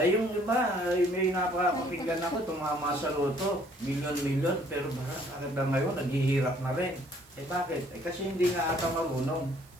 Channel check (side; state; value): right; noise; hiss, 26 dB below the sound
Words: yung iba, may napakapakinggan ako, tumama sa loto, milyon-milyon, pero bakit na ngayon, naghihirap na rin. Bakit? Kasi hindi nga ata marunong